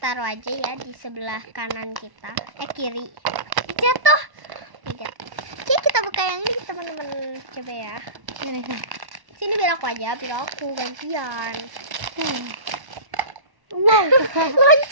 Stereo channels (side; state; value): left; late; 1.1 ms